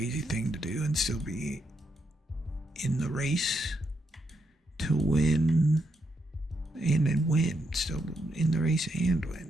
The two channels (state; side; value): normal; both; correlation 0.80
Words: thing to do and still be in the race to win and then win. Still in the race and win.